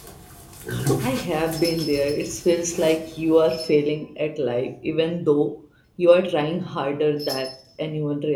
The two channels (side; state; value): both; identical; correlation 1.00